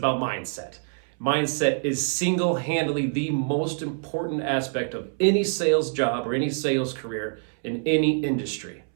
mindset. Mindset is single-handedly the most important aspect of any sales job or any sales career in any industry.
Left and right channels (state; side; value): silent; left; 61 dB below the other